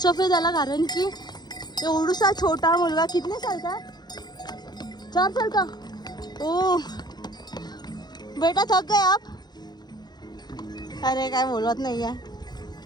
ऑफ आहे त्याला, कारण की एवढूसा छोटा मुलगा, कितने साल का, 4 साल का, ओ बेटा थक गए आप, अरे काय बोलत नाही आहे,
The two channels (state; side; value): late; right; 0.20 ms